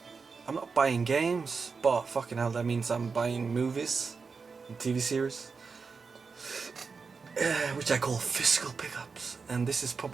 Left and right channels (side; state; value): left; quieter; 5.0 dB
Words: not buying games, but fucking hell, that means I'm buying movies and TV series. Which I call physical pickups, and this is